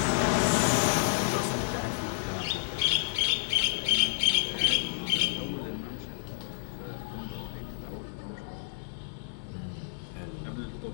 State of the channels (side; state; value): right; silent; digital silence